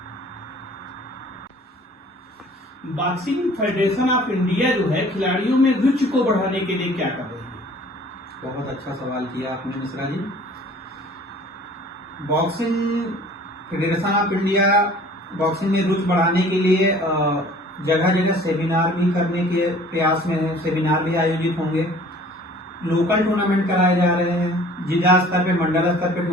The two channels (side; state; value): both; normal; correlation 0.50